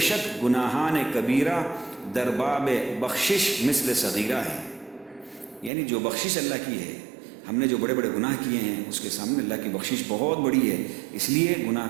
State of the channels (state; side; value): drops out; left; at 5.7 s